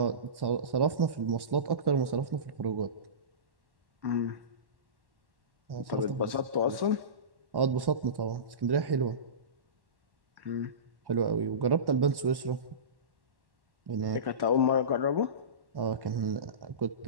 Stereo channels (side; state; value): left; late; 1.1 ms